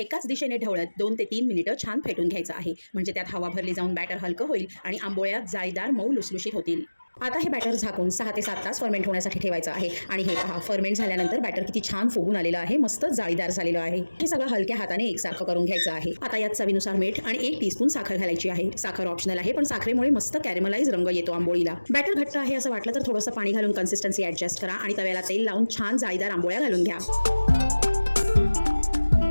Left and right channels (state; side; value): inverted; both; correlation -1.00